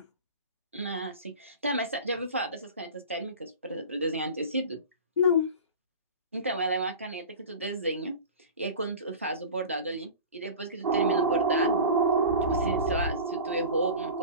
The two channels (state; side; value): inverted; both; correlation -0.34